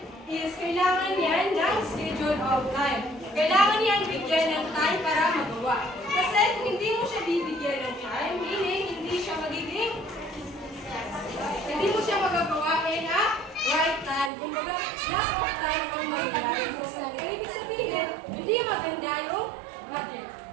is kailangan yan ng schedule of time. Kailangan yan bigyan ng time para magawa. Kasi kung hindi mo siya bibigyan ng time, meaning hindi mo siya magagawa in a right time. Kumbaga, lack of time ang mangyayari. So, ibig sabihin, hindi maganda yung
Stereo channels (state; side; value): drops out; left; at 14.3 s